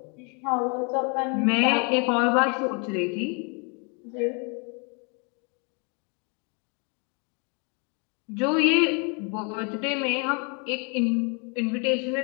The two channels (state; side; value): quieter; right; 35.1 dB